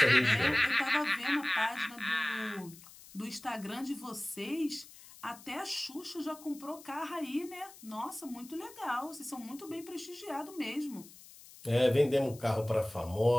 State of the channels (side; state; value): left; noise; hiss, 20 dB below the sound